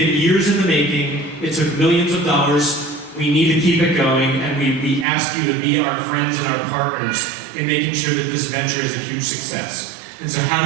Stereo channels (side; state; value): left; drops out; at 5.1 s